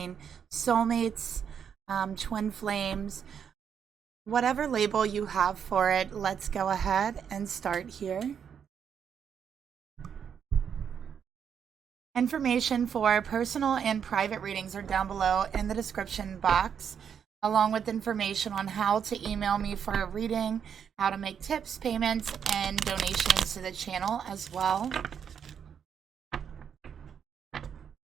soulmates, twin flames, whatever label you have for it. Let's go ahead and start here. Information for personal and private readings are down below in the description box, along with information on how to email me for a reading, how to make tips, payments, and donations to the channel as well.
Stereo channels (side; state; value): left; quieter; 7.7 dB